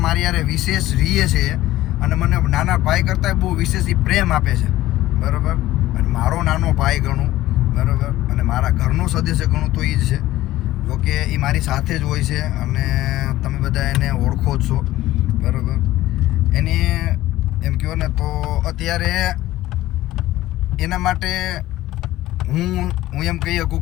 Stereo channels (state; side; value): quieter; right; 15.7 dB